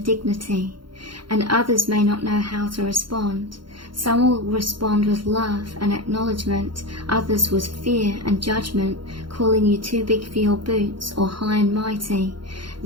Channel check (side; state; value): left; late; 0.73 ms